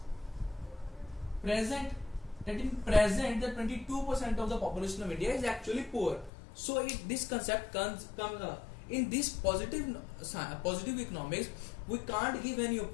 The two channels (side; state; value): right; drops out; at 6.3 s